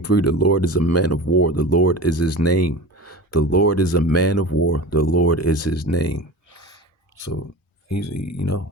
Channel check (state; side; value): normal; both; correlation 0.32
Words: the Lord is a man of war. The Lord is his name. The Lord is a man of war. The Lord is his name. So he's, and